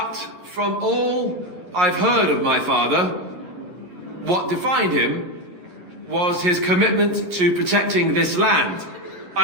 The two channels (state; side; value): late; left; 11 ms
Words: from all I've heard of my father, what defined him was his commitment to protecting this land.